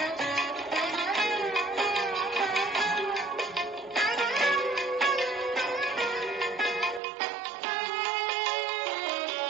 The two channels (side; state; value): left; drops out; at 7.0 s